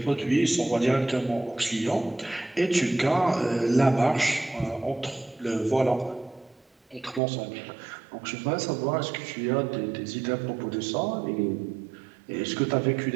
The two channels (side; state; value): left; drops out; at 7.2 s